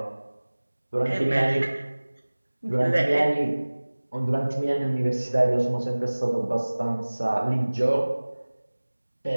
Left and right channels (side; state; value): both; inverted; correlation -1.00